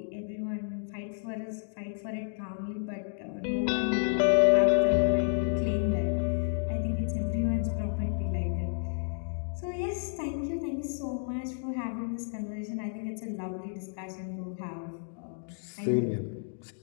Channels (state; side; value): silent; right; 57 dB below the other